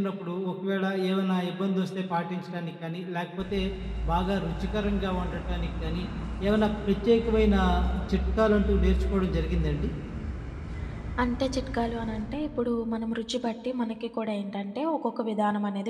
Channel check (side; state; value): both; identical; correlation 1.00